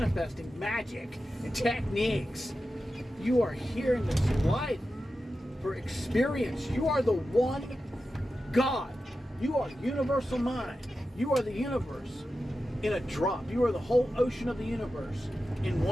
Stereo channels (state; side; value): normal; both; correlation 0.92